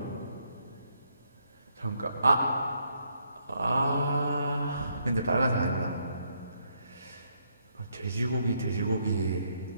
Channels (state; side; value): inverted; both; correlation -0.74